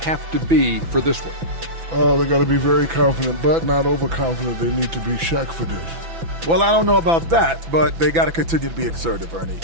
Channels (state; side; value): late; left; 6.0 ms